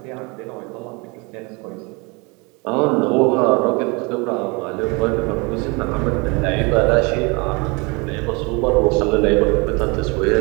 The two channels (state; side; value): quieter; left; 28.5 dB